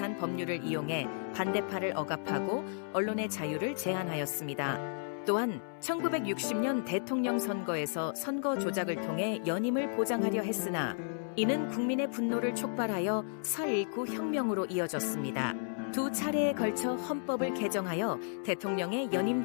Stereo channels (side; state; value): right; silent; 56 dB below the other